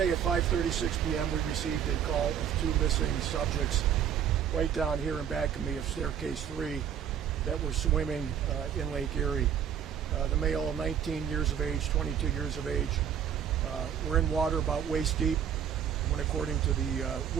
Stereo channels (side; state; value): left; quieter; 8.8 dB